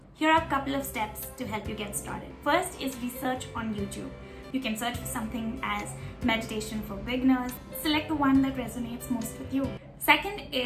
Here are a couple of steps to help you get started. First is research on YouTube. You can search for something as meditation for beginners. Select the one that resonates most with you. Second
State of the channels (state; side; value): identical; both; correlation 1.00